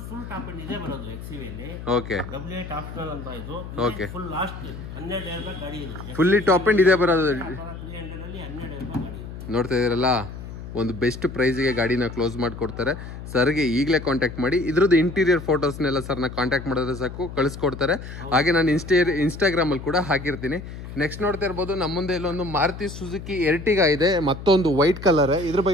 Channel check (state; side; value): noise; left; hum, 11 dB below the sound